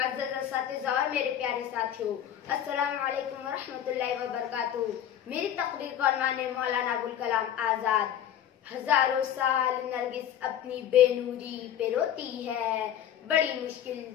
असातिज़ा और मेरे प्यारे साथियों, अस्सलामु अलैकुम व रहमतुल्लाहि व बरकातुहू। मेरी तकरीर का उन्वान है मौलाना अबुल कलाम आज़ाद। हजारों साल नरगिस अपनी बेनूरी पे रोती है, बड़ी मुश्किल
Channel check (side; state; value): right; quieter; 10.3 dB